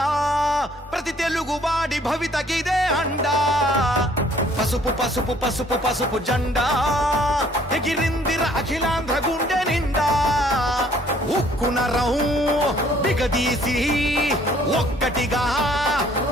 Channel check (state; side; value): normal; both; correlation 0.60